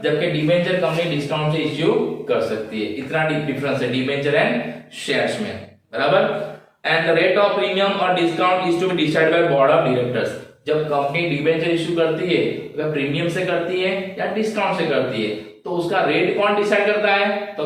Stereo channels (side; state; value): both; identical; correlation 1.00